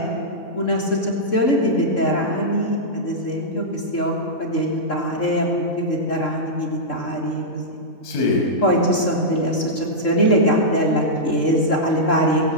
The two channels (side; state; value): right; late; 3.7 ms